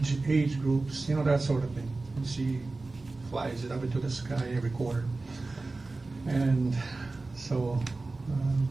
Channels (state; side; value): quieter; left; 3.4 dB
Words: groups, that sort of thing. And she flies it up into the sky every quarter. And so